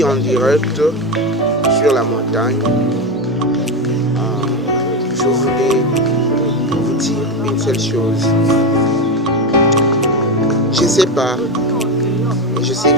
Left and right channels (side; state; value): both; normal; correlation 0.15